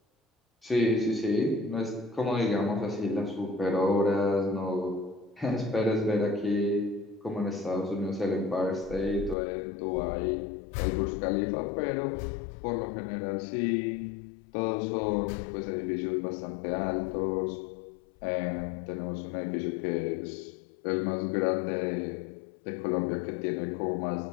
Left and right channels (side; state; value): right; drops out; at 9.3 s